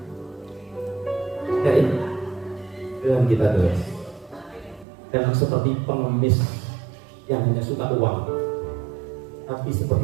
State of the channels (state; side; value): drops out; left; at 4.9 s